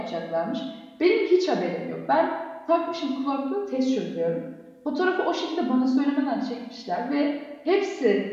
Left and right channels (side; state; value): both; identical; correlation 1.00